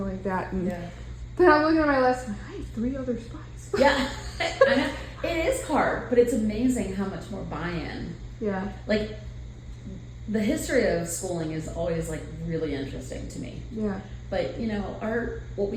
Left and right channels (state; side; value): identical; both; correlation 1.00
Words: like that. And then I'm looking at my lesson, I have 3 other spots. Yeah. I know. It is hard, but it's amazing how much more buy-in. Yeah. The history of schooling is always really interesting to me. Yeah. But what